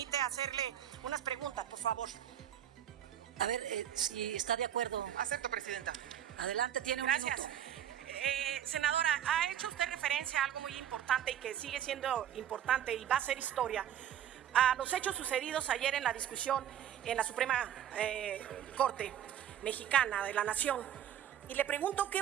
hacerle unas preguntas, por favor. A ver, si está de acuerdo. Acepto, presidenta. Adelante, tiene un Gracias. minuto. Senadora, ha hecho usted referencia a algo muy importante y que sigue siendo importante y va a ser historia. A los hechos sucedidos ayer en la discusión en la Suprema Corte Mexicana de la Nación. Y le pregunto qué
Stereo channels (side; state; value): left; quieter; 10.2 dB